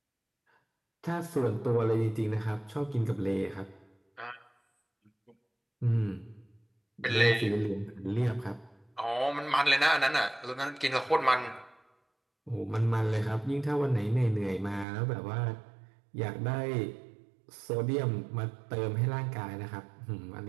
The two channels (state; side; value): drops out; left; at 14.9 s